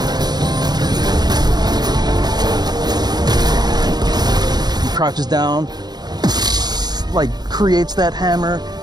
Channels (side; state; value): left; late; 0.20 ms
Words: He crouches down, like creates that hammer,